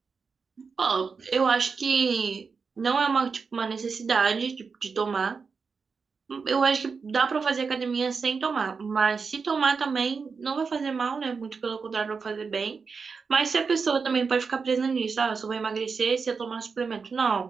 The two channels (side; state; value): left; quieter; 5.2 dB